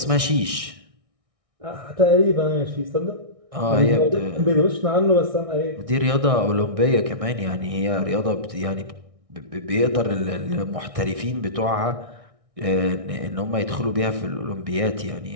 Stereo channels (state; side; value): late; left; 1.6 ms